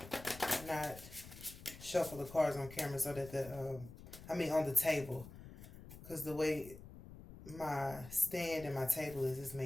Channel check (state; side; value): noise; left; rumble, 15 dB below the sound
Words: not shuffle the cards on camera so that on the table. Because the way my stand and my table is